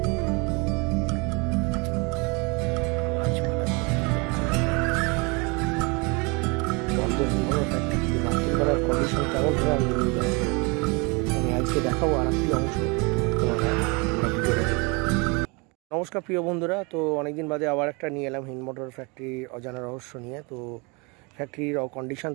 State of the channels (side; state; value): left; quieter; 29.5 dB